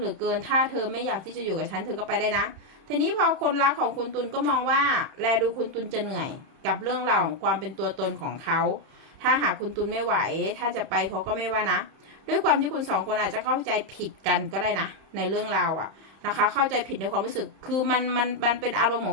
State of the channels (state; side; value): late; left; 31 ms